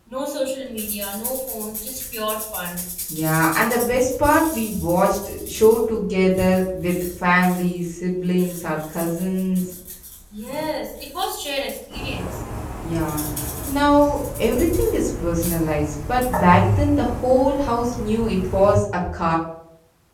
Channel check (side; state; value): both; identical; correlation 1.00